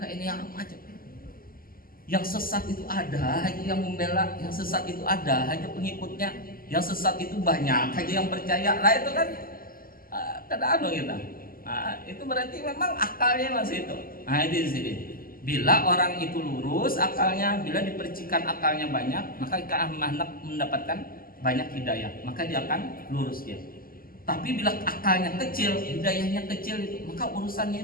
yang macam. Yang sesat itu ada, hanya yang membela, yang sesat itu ada, hanya pengikutnya. Yang sesat itu banyak, hanya yang percaya. Itu kan kada kita. Itu berarti memang akalnya masih itu. Itu di sini. Bila orang itu lurus akalnya, bila dipercikan akalnya banyak, maka akan mendapatkan banyak hidayah, maka dia akan lurus dia. Tapi bila akalnya kecil, hidayahnya kecil itu, maka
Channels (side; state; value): right; late; 0.42 ms